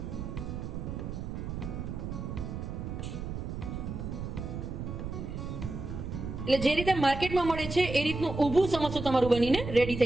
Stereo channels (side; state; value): right; noise; rumble, 6 dB below the sound